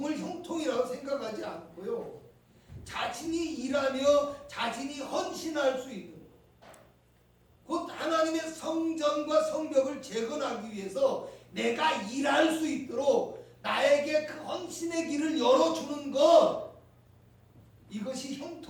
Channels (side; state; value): both; identical; correlation 1.00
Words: 형통이라고 생각하지 않고요 자신이 일하며 자신이 헌신할 수 있는 곧 하나님의 성전과 성벽을 재건하기 위해서 내가 일할 수 있도록 나에게 그 헌신의 길을 열어주는 것, 이것이